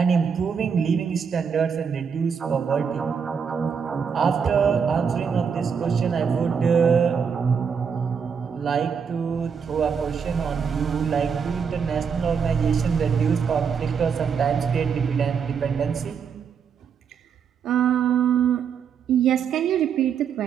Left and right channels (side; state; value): left; quieter; 6.6 dB